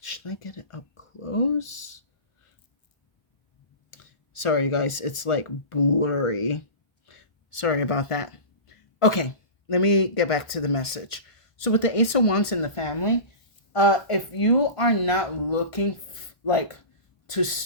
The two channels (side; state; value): right; late; 1.2 ms